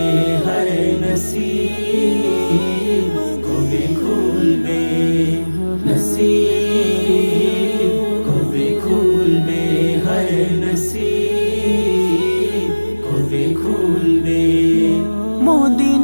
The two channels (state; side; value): inverted; both; correlation -1.00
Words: হায় নসিব কবে খুলবে, নসিব কবে খুলবে, হায় নসিব কবে খুলবে।